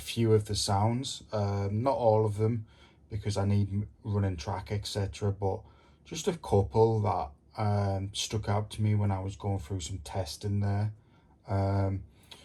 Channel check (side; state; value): both; identical; correlation 1.00